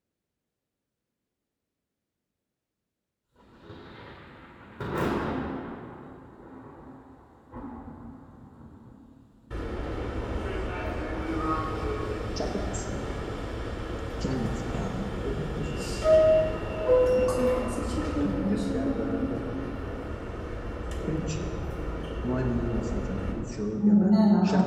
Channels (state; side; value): identical; both; correlation 1.00